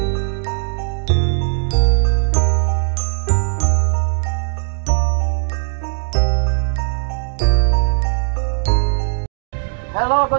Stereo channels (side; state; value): left; silent; digital silence